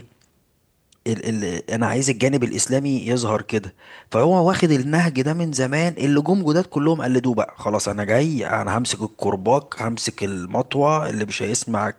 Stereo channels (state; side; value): identical; both; correlation 1.00